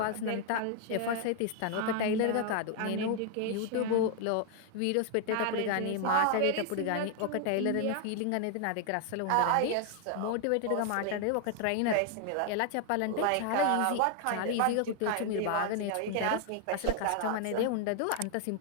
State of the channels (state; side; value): different; both; correlation 0.00